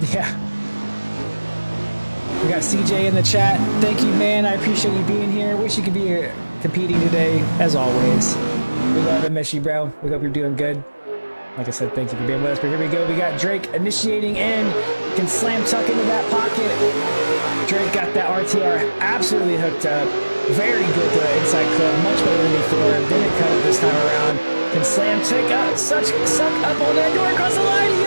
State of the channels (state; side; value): inverted; both; correlation -1.00